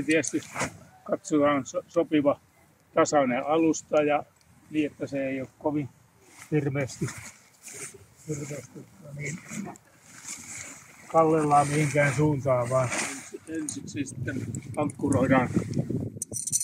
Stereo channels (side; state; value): both; identical; correlation 1.00